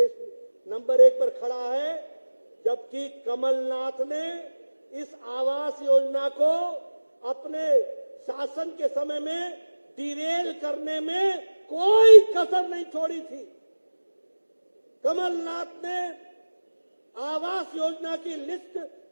नंबर 1 पर खड़ा है, जबकि कमलनाथ ने इस आवास योजना को अपने शासन के समय में डिरेल करने में कोई कसर नहीं छोड़ी थी। कमलनाथ ने आवास योजना की लिस्ट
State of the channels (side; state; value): both; inverted; correlation -1.00